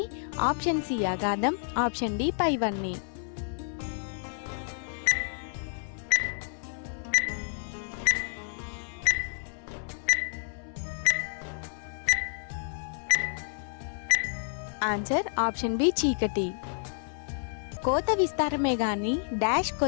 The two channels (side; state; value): right; silent; 58 dB below the other